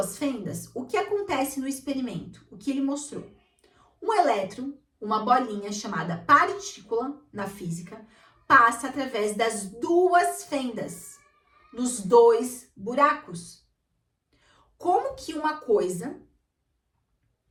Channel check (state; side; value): identical; both; correlation 1.00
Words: fendas, o que acontece no experimento? O que ele mostrou? Um elétron, uma bolinha chamada partícula na física, passa através das 2 fendas, nos 2 buracos. Como que uma coisa